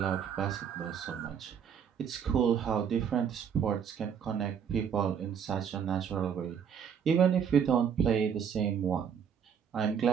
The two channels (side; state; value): left; quieter; 7.7 dB